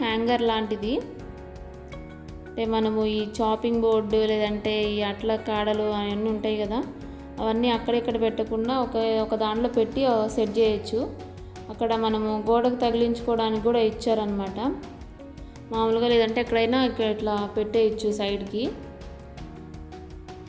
హ్యాంగర్ లాంటిది. అంటే మనము ఈ చాపింగ్ బోర్డు లేదంటే ఈ అట్ల కాడలు అవన్నీ ఉంటాయి కదా, అవన్నీ అక్కడెక్కడ పెట్టకుండా ఒక దాంట్లో పెట్టి సెట్ చేయొచ్చు. అక్కడ మనము గోడకు తగిలించుకోవడానికి కూడా ఇచ్చారనమాట మామూలుగా, లేదంటే ఎక్కడైనా ఇట్లా పెట్టేయచ్చు సైడ్కి.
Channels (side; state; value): both; identical; correlation 1.00